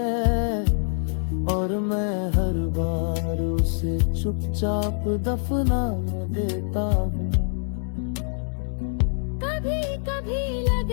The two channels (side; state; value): right; silent; digital silence